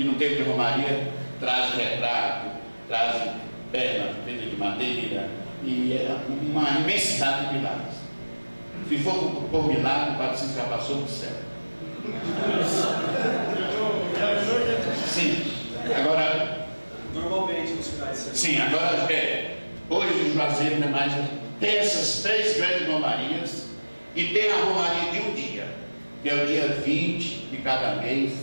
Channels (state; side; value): inverted; both; correlation -1.00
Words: no tempo de Romaria traz retrato, traz perna feita de madeira e é uma imensidade de milagres. Se for por milagre, o Padre Cícero já passou do céu. Sim, agora. Normalmente nos finais de semana. Sim, agora hoje o Juazeiro não é mais. Tem essas 3 grandes romarias e tem a romaria de um dia, que é o dia 20 de cada mês,